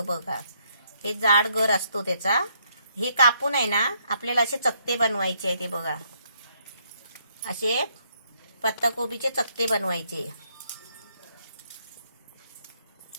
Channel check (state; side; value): inverted; both; correlation -0.72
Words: बघा, हे जाड गर असतो त्याचा. हे कापून आहे ना आपल्याला असे चकते बनवायचे आहे. ते बघा, असे पत्ताकोबीचे चकते बनवायचे